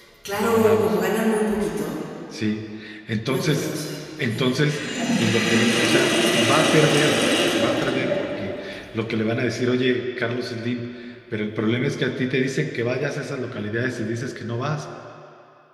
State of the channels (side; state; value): both; identical; correlation 1.00